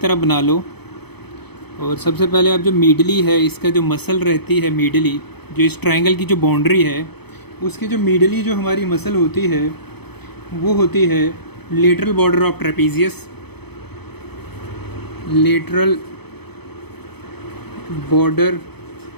बना लो। और सबसे पहले आप जो मीडली है, इसका जो मसल रहती है मीडली, जो इस ट्रायंगल की जो बाउंड्री है, उसकी जो मीडली जो हमारी मसल होती है वो होती है lateral border of trapezius. Lateral border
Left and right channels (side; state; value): right; late; 0.98 ms